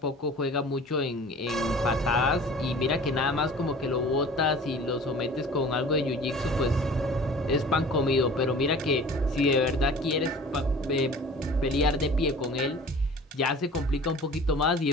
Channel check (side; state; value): both; normal; correlation 0.44